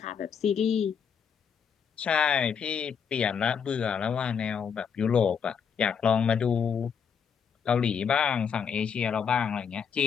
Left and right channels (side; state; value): right; quieter; 7.0 dB